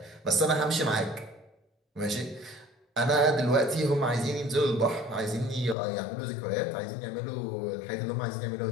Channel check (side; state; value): right; drops out; at 5.8 s